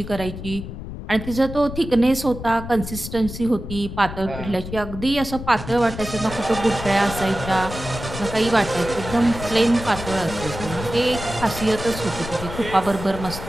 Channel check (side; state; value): left; noise; rumble, 9 dB below the sound